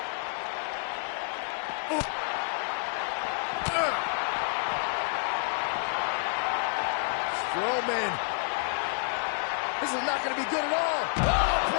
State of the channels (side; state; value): right; silent; 58 dB below the other